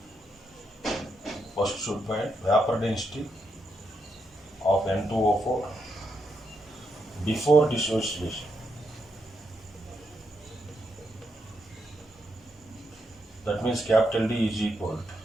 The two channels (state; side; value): normal; both; correlation 0.80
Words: First should find vapor density of N2O4 before dissociation. That means capital D is equal